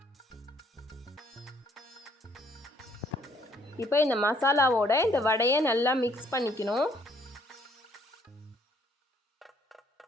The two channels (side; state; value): both; normal; correlation 0.65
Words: இப்போ இந்த மசாலாவோட இந்த வடையை நல்லா மிக்ஸ் பண்ணிக்கணும்.